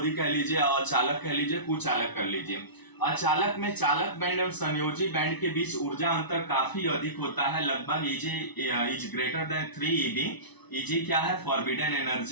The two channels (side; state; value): right; late; 1.0 ms